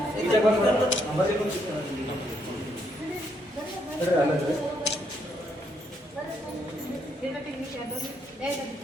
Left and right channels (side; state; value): both; normal; correlation 0.74